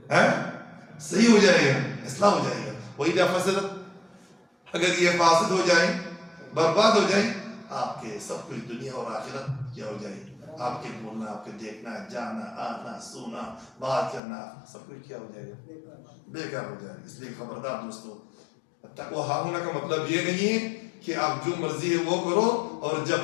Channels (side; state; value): right; drops out; at 14.2 s